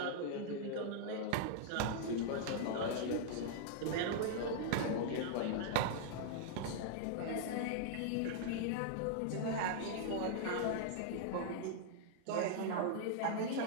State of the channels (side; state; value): both; different; correlation -0.01